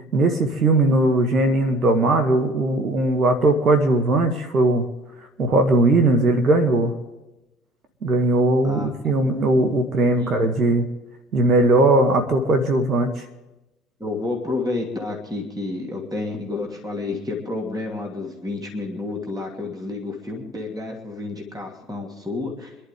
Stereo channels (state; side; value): normal; both; correlation 0.49